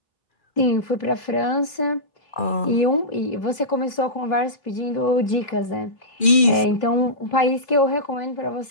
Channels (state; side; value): late; right; 2.4 ms